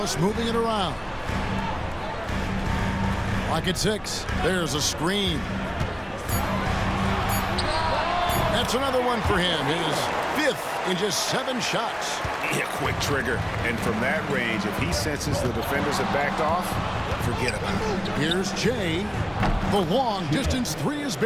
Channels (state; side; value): identical; both; correlation 1.00